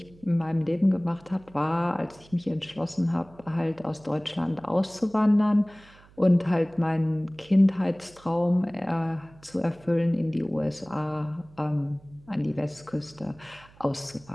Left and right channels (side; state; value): right; noise; hum, 25 dB below the sound